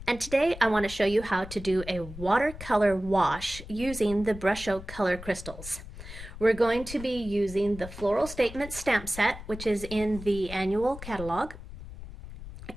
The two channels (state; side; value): noise; left; rumble, 13 dB below the sound